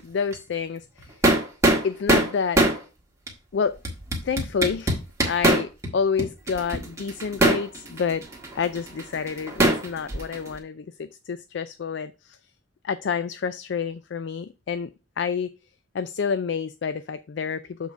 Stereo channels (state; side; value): normal; both; correlation 0.15